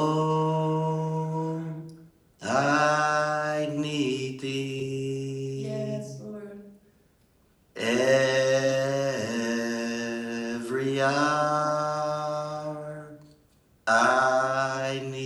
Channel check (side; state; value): both; identical; correlation 1.00